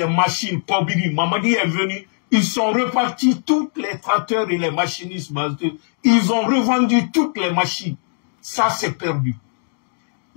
machines, Kobiri, Mamadi est venu, ils sont repartis tous les tracteurs et les machinistes. Ils ont revendu toutes les machines. Ça, c'est perdu.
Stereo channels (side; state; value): right; silent; digital silence